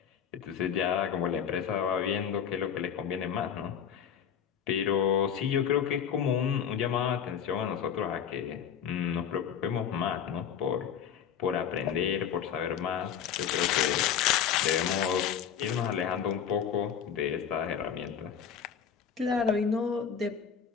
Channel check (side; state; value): right; quieter; 8.2 dB